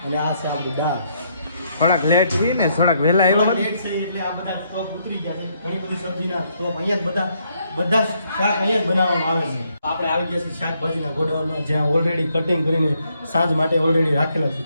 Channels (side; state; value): both; inverted; correlation -0.73